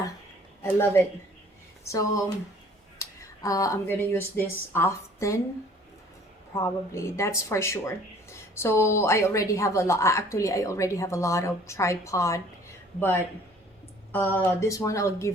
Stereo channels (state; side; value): normal; both; correlation 0.54